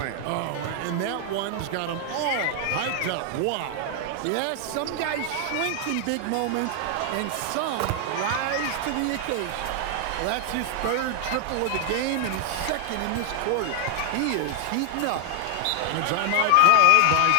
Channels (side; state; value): both; different; correlation 0.00